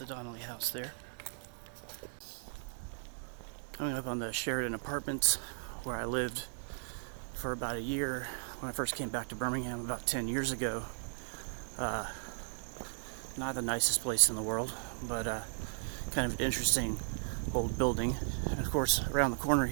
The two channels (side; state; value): left; silent; digital silence